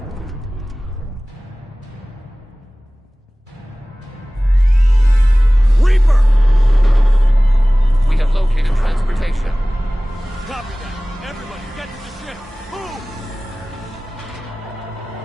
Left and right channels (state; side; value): normal; both; correlation 0.98